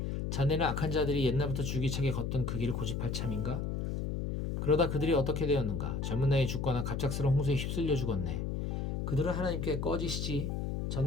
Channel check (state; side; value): noise; left; hum, 2 dB below the sound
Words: 자네는 악한 자들이 옛날부터 줄기차게 걷던 그 길을 고집할 참인가? 그러다 그들이 어떻게 되었는가? 젊은 나이에 죽거나 갑작스러운 홍수에 휩쓸려 죽었네. 그들은 하나님께 꺼지시지